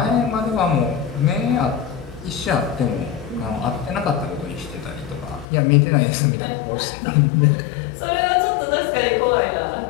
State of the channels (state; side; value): drops out; right; at 5.5 s